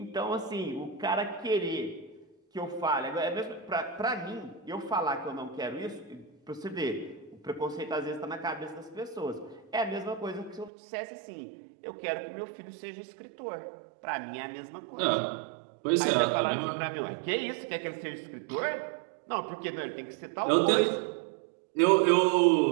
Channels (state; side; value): drops out; left; at 10.7 s